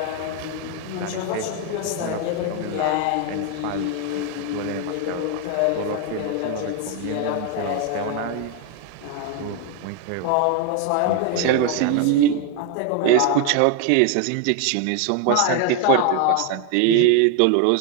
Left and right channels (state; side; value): different; both; correlation 0.01